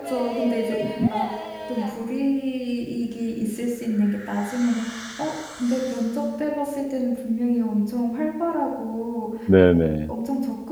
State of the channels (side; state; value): both; identical; correlation 1.00